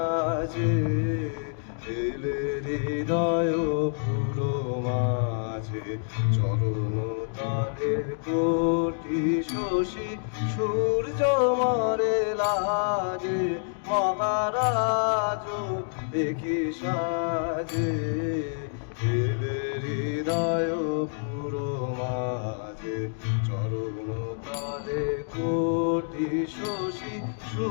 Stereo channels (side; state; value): right; silent; digital silence